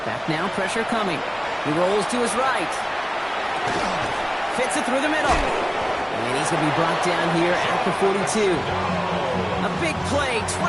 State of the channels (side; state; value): both; identical; correlation 1.00